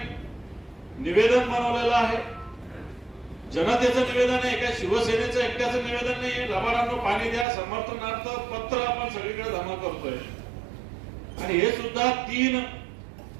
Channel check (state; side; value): drops out; left; at 7.5 s